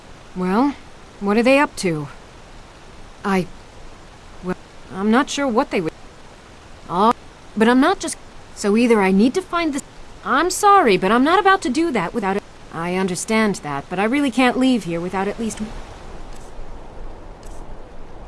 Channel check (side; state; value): both; identical; correlation 1.00